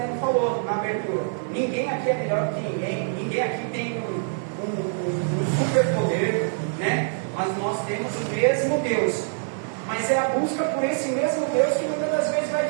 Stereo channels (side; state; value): left; silent; digital silence